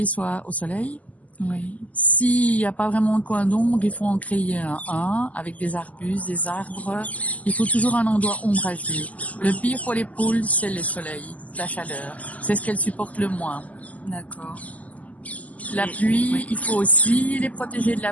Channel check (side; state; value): right; late; 0.074 ms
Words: soit au soleil. Oui. S'il n'y a pas vraiment de coin d'ombre, il faut en créer un avec des arbustes, des arbres. Il faut toujours un endroit ombragé. Le pire pour les poules, c'est le soleil, la chaleur. C'est ce qu'elles supportent le moins. D'accord. La pluie, il faut aussi les protéger de